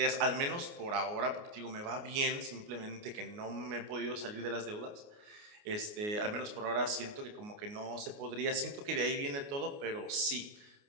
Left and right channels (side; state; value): left; late; 29 ms